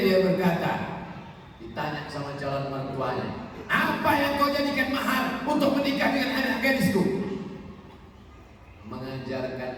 dia berkata, ditanya sama calon mertuanya, apa yang kau jadikan mahar untuk menikah dengan anak gadisku? Mengajarkan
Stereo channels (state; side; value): identical; both; correlation 1.00